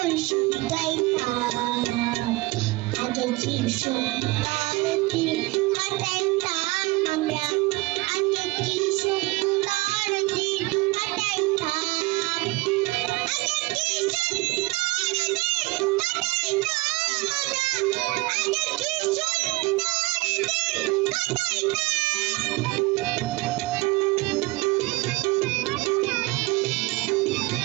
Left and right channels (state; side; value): quieter; left; 22.5 dB